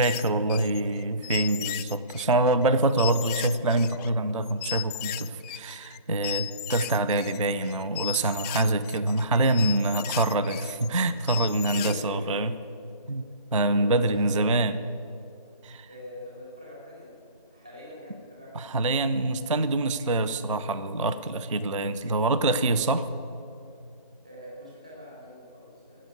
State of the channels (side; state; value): both; inverted; correlation -0.45